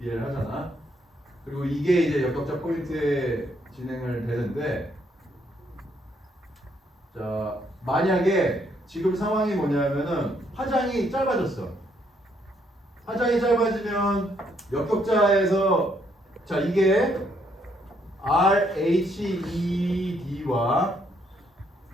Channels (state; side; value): normal; both; correlation 0.71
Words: 하잖아. 그리고 이게 이제 역격자 포인트에 진행을 되는데, 자 만약에 지금 상황이 뭐냐면은 파장이 짧아졌어. 파장이 짧아지면 역격자에서 자 이게 RHED와